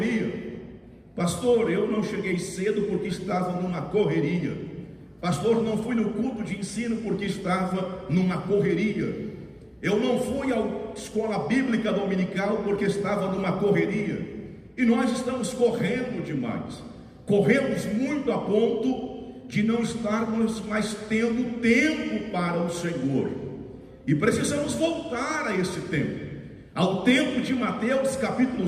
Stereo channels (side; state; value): both; identical; correlation 1.00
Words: Pastor, eu não cheguei cedo porque estava numa correria. Pastor, não fui no culto de ensino porque estava numa correria. Eu não fui à escola bíblica dominical porque estava numa correria. E nós estamos correndo demais. Corremos muito a ponto de não estarmos mais tendo tempo para o Senhor. E precisamos voltar a esse tempo, ao tempo de Mateus capítulo